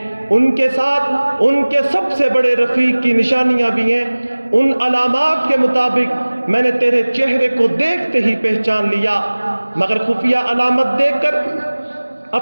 ان کے ساتھ ان کے سب سے بڑے رفیق کی نشانیاں بھی ہیں۔ ان علامات کے مطابق میں نے تیرے چہرے کو دیکھتے ہی پہچان لیا، مگر خفیہ علامت دیکھ کر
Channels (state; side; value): inverted; both; correlation -1.00